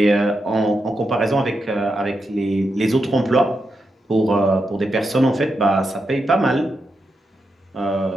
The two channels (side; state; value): both; normal; correlation 0.86